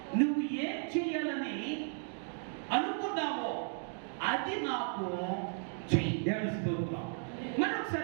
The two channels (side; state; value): left; silent; 55 dB below the other